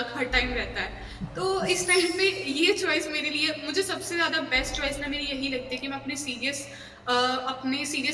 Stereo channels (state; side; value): identical; both; correlation 1.00